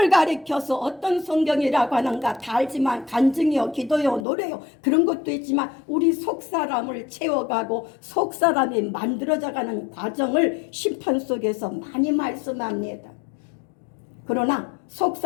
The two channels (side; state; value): right; drops out; at 4.2 s